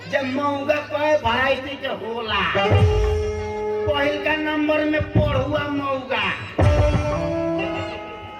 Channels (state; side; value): identical; both; correlation 1.00